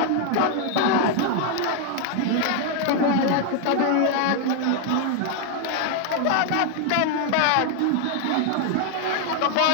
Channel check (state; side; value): different; both; correlation 0.00